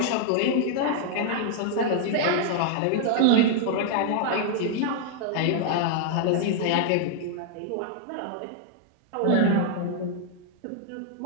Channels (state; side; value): different; both; correlation -0.01